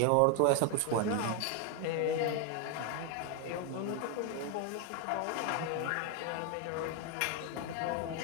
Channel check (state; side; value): different; both; correlation 0.01